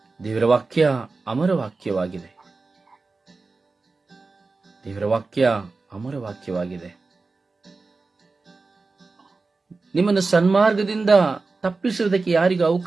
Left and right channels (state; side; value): quieter; left; 3.9 dB